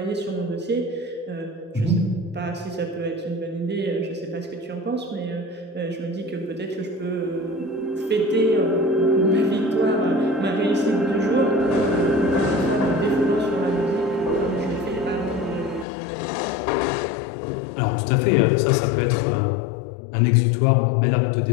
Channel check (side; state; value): right; drops out; at 15.9 s